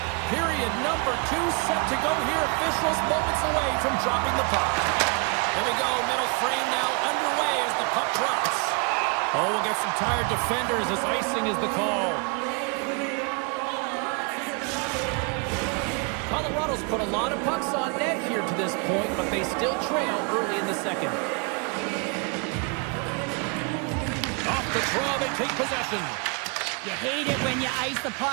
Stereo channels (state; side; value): quieter; left; 33.4 dB